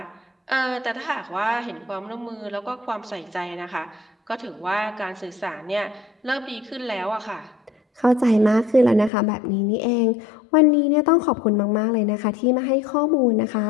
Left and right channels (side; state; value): right; drops out; at 9.1 s